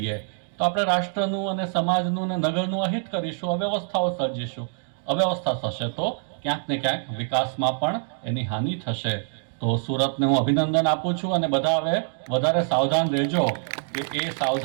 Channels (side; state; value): left; silent; digital silence